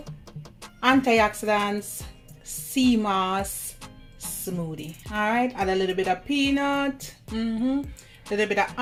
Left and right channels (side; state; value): both; identical; correlation 1.00